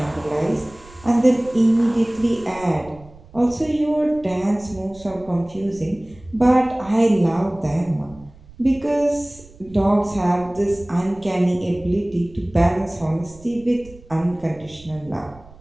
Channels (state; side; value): noise; right; rumble, 22 dB below the sound